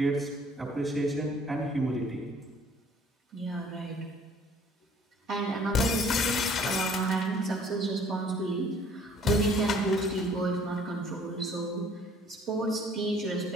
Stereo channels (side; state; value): both; normal; correlation 0.57